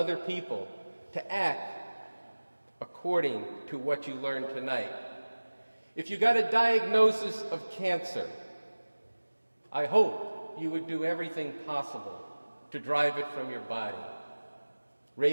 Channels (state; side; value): inverted; both; correlation -1.00